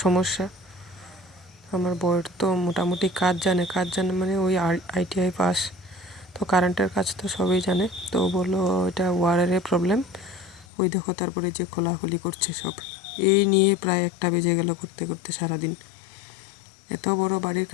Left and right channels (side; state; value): right; drops out; at 10.7 s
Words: সমস্যা। আমার বউয়ের তো মোটামুটি কাজ জানে মানে ওই ITI পাস, তো কারেন্টের কাজ তো সবই জানে। তো ও বললো এটা ওয়ারের প্রবলেম। ওই দেখো তারপরে যে খোলাখুলি করছে সব। এই নিয়ে প্রায় 1টা বেজে গেল করতে করতে সারাদিন। এত বড় বাড়ির